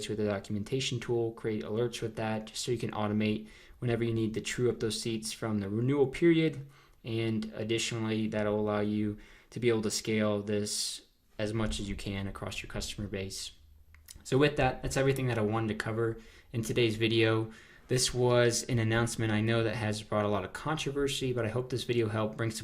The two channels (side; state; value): both; identical; correlation 1.00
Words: with a documentation tool, create alerts with that just so you can automate whenever you need to true up those seats from the renewal period. And additionally, that'll allow you to be able to scale this as much as you can across your customer base. So with that, that's everything that I wanted to cover in today's video. This was an announcement I know that has brought a lot of controversy, but I hope this video helped bring